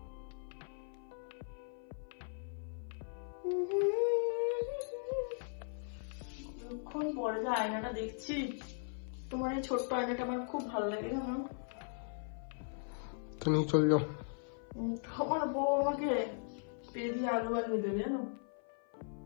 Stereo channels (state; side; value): silent; right; 52 dB below the other